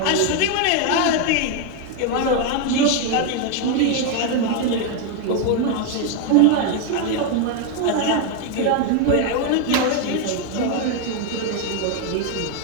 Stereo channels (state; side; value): different; both; correlation 0.01